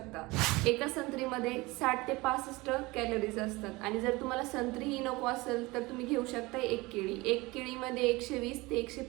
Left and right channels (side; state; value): left; quieter; 22.4 dB